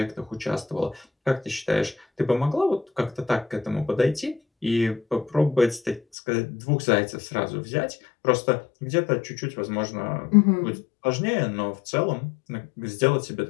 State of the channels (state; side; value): drops out; right; at 6.0 s